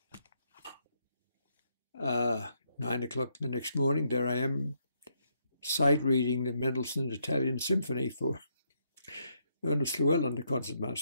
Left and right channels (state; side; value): inverted; both; correlation -0.76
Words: 9 o'clock the next morning, there I am, sight reading the Mendelssohn Italian Symphony for Ernest Llewellyn, the